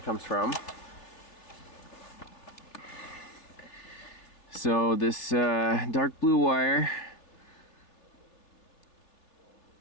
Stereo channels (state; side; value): late; right; 3.2 ms